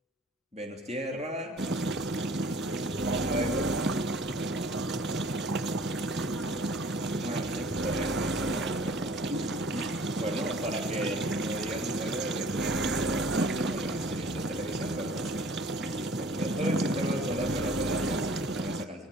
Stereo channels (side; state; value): both; normal; correlation 0.51